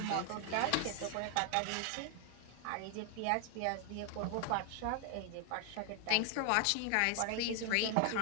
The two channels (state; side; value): different; both; correlation 0.00